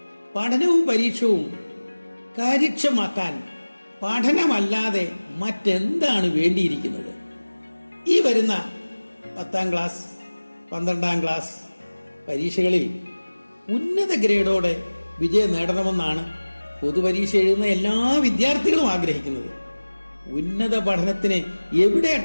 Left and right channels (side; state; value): both; inverted; correlation -1.00